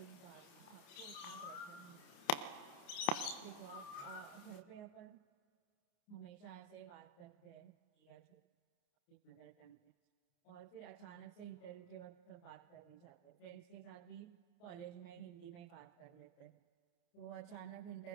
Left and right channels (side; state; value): right; late; 29 ms